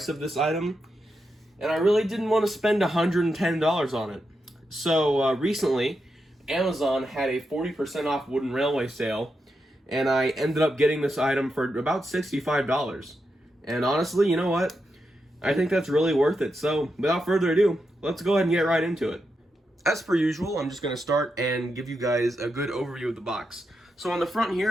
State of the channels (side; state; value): both; normal; correlation 0.86